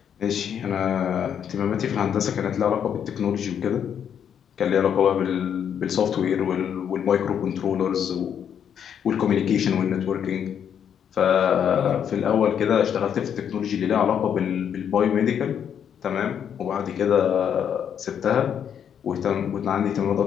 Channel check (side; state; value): right; quieter; 8.5 dB